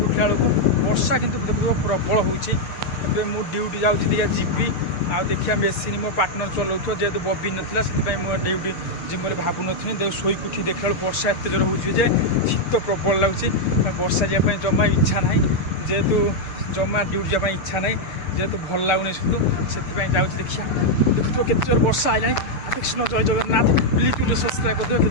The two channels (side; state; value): right; late; 6.6 ms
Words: उठला बेलू वर्षा कि देखो प्रबल होबे मु ड्यूटी जाऊँगी जीवी आ देखिए मेसीन मो पार्टनर चलाऊ जेहेतु बबी नाला से मुझे ड्यूटी जिम भावु नी देख शोक उठी देखा वर्षा एत जोर हो शीत प्रबल लगुच वर्षा जावाई जमा इच्छा ना जेहेतु जमा ड्यूटी जावाई इच्छा ना जेहेतु भल लगुनि से जाऊँगी देखिए देखो केते जोर वर्षा आइलानी कृष्ण जय जगन्नाथ प्लीज गोटे सब्सक्राइब कर